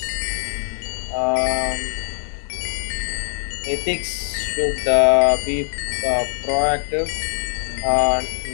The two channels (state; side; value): silent; right; digital silence